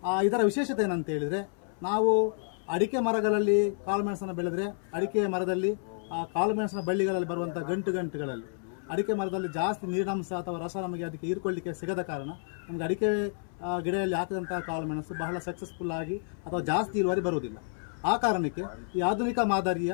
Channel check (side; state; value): right; silent; 58 dB below the other